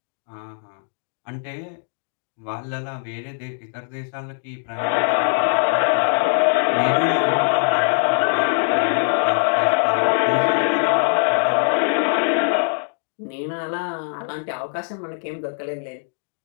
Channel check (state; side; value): silent; right; digital silence